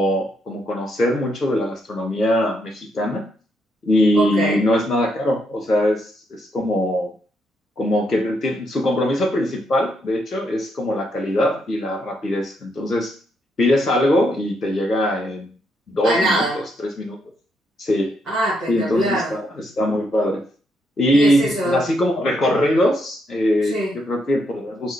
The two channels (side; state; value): both; normal; correlation 0.77